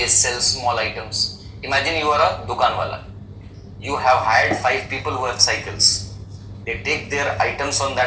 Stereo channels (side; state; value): both; identical; correlation 1.00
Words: sell small items. Imagine you are a dukan wala. You have hired 5 people who have cycles. They take their items on